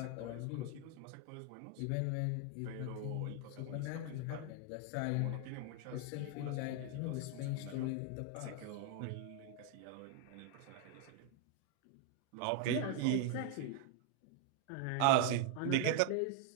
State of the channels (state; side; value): different; both; correlation 0.01